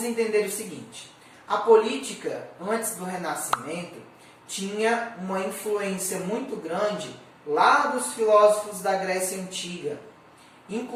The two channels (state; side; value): identical; both; correlation 1.00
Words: entender o seguinte: a política, antes do Renascimento, tinha uma influência muito grande lá dos filósofos da Grécia Antiga,